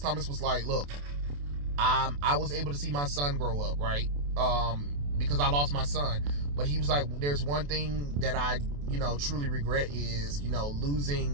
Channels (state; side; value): late; left; 28 ms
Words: was like, look, I was able to see my son grow up, right? Because I lost my son. But he was like, there's one thing that I, you know, truly regret is, you know,